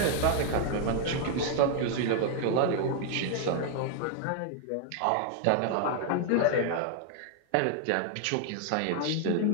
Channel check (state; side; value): different; both; correlation 0.00